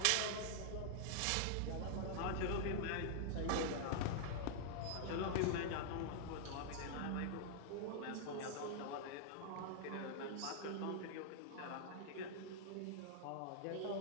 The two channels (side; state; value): both; different; correlation -0.01